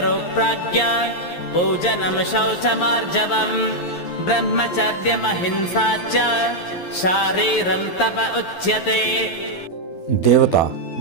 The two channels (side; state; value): right; late; 11 ms